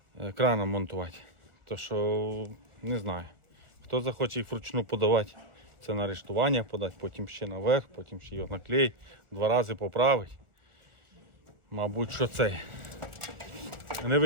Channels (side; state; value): left; late; 1.4 ms